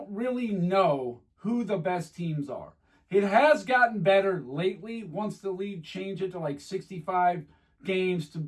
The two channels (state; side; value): identical; both; correlation 1.00